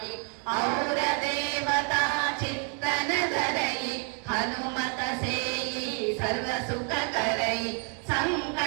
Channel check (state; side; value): quieter; left; 39.6 dB